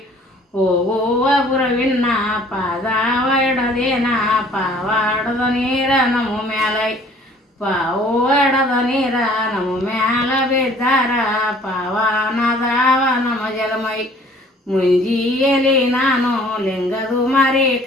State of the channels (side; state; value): both; normal; correlation 0.54